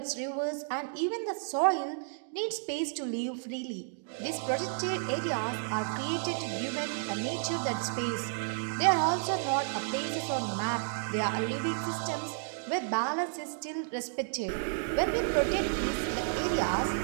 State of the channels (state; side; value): silent; left; digital silence